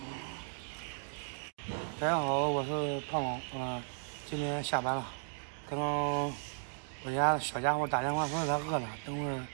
大家好，我是胖胖，今天下班了，刚刚我家小家伙打电话说他饿了，等会儿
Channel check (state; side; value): silent; left; digital silence